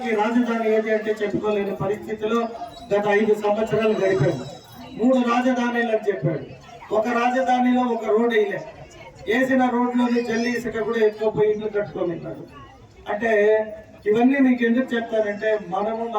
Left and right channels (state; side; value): identical; both; correlation 1.00